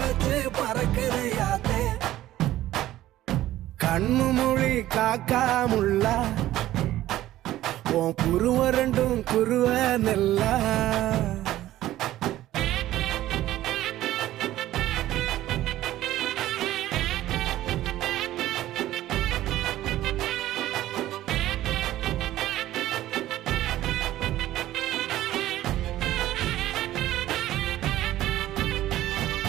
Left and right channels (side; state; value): left; quieter; 14.4 dB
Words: பறக்குதையாத்தே கண்ணு மொழி காக்காமுள்ள உன் குருவ ரெண்டும் குருவ நெல்லா